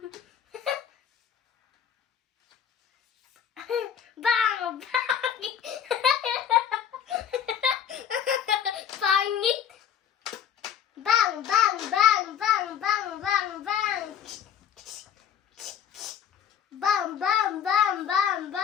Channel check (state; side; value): quieter; right; 8.8 dB